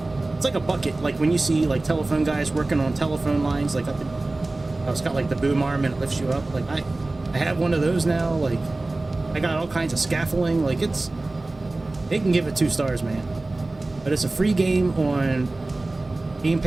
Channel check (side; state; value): left; quieter; 3.0 dB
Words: It's like a bucket, like when you see like telephone guys working on telephone lines, like up in, it's got like the boom arm and it lifts you up. Like I have one of those now. Like I got all kinds of scaffolding. Like they can give it 2 stars, man. But it's a free game on Game